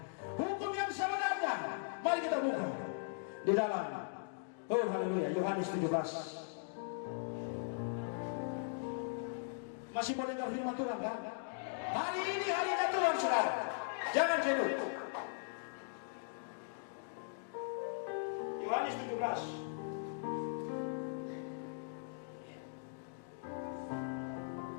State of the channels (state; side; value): silent; right; digital silence